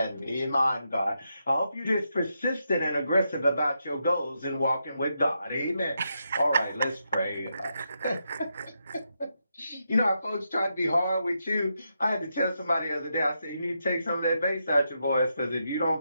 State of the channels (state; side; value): inverted; both; correlation -0.83